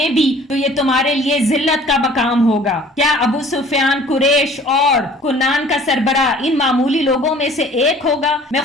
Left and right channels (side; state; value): both; normal; correlation 0.51